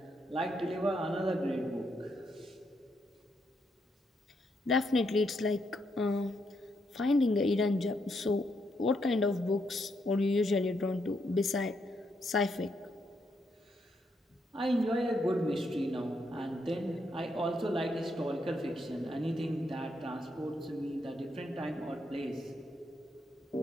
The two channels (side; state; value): both; normal; correlation 0.78